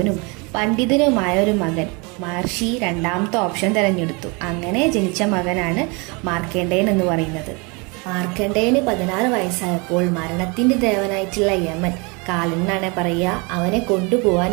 പണ്ഡിതനുമായ ഒരു മകൻ. മഹർഷി രണ്ടാമത്തെ ഓപ്ഷൻ തിരഞ്ഞെടുത്തു. അങ്ങനെ ജനിച്ച മകനാണ് മാർക്കണ്ഡേയൻ എന്ന് പറയുന്നത്. മാർക്കണ്ഡേയന് 16 വയസ്സായപ്പോൾ മരണത്തിന്റെ ദേവനായിട്ടുള്ള യമൻ, കാലൻ എന്നാണ് പറയുക, അവനെ കൊണ്ടുപോകാൻ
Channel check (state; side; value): quieter; left; 29.7 dB